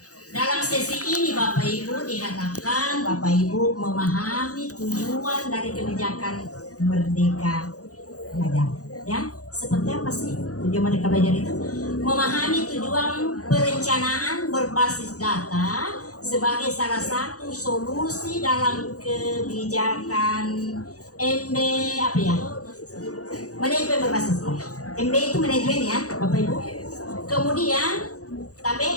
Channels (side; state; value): right; late; 0.66 ms